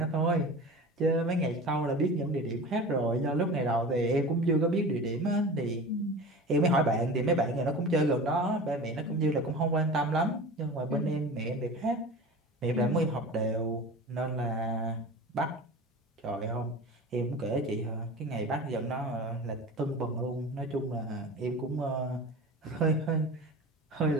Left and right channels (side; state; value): both; normal; correlation 0.34